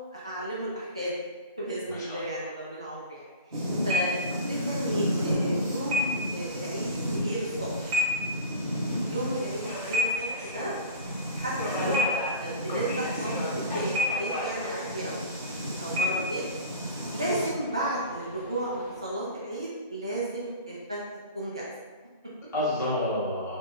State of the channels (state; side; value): inverted; both; correlation -0.35